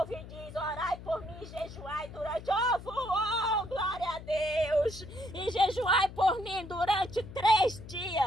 e diz: orai por mim e jejuai durante... Oh, glória a Deus! E jejuai por mim durante 3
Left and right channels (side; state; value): left; noise; hum, 14 dB below the sound